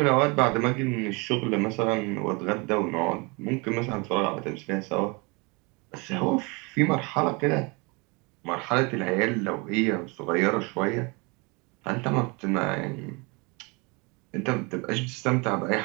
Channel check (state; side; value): quieter; left; 28.7 dB